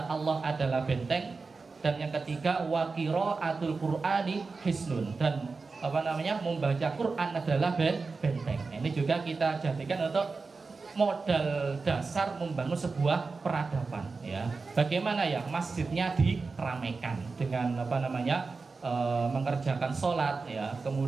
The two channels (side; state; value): left; quieter; 4.3 dB